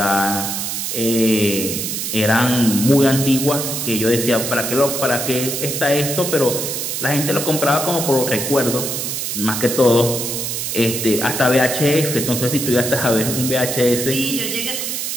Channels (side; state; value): right; noise; hiss, 3 dB below the sound